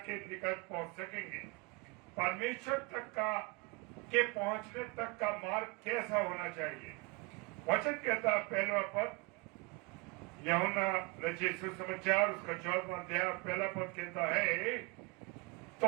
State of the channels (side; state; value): left; quieter; 27.9 dB